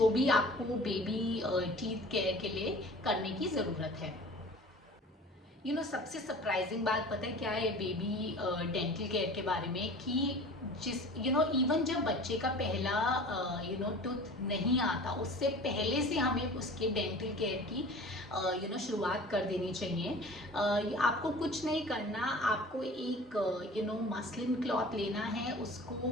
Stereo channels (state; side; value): normal; both; correlation 0.41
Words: भी आपको बेबी टीथ केयर के लिए करने की ज़रूरत है. सबसे सरप्राइजिंग बात पता है क्या है बेबी डेंटल केयर के बारे में कि जिस इवन जब बच्चे का पहला टूथ नहीं आता उससे पहले से हमें उसके डेंटल केयर की शुरुआत कर देनी चाहिए. आपको कुछ नहीं करना, आपको एक मसलिन क्लॉथ लेना है, उसको